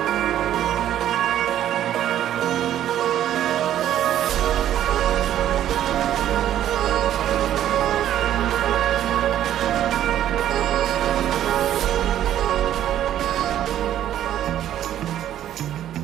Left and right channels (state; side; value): quieter; left; 11.5 dB